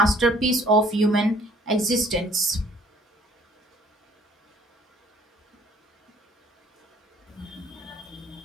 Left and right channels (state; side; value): normal; both; correlation 0.57